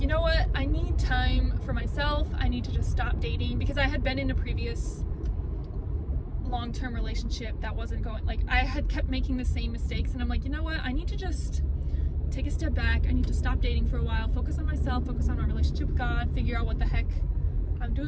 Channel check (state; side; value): identical; both; correlation 1.00